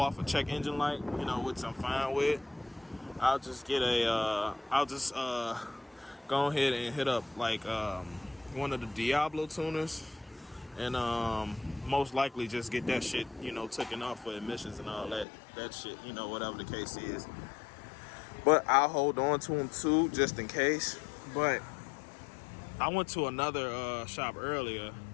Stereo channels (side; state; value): right; drops out; at 15.2 s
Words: a check engine light, which I'm fine with. I'll just get go ahead and hit up like one of the Diablo tuners and most likely just get that shit taken off for emissions and all that shit, whatever the case is. But I'll hold on to them too just in case. But I went to another shop earlier